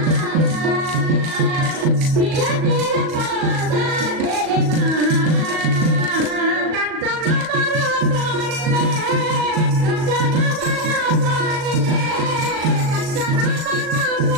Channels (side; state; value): left; late; 37 ms